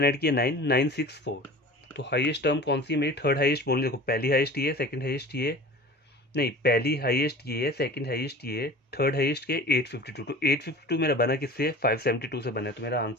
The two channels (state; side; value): normal; both; correlation 0.39